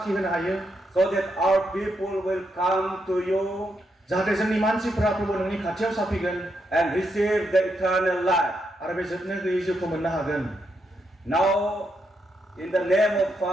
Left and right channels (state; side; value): normal; both; correlation 0.80